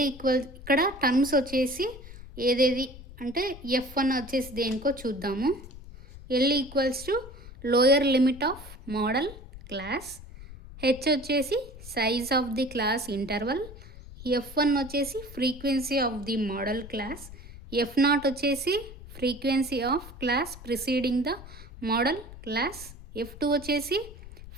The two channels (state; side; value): noise; left; rumble, 15 dB below the sound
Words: equal ఇక్కడ టర్మ్స్ వచ్చేసి ఏదేది అంటే F1 వచ్చేసి దేనికో చూద్దాము. L equals to lower limit of modal class, H వచ్చేసి size of the class interval, F1 వచ్చేసి frequency of the modal class, F0 వచ్చేసి frequency of class preceding the modal class, F2 వచ్చేసి